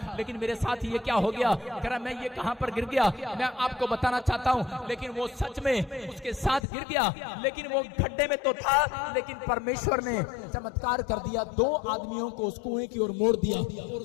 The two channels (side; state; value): right; drops out; at 6.7 s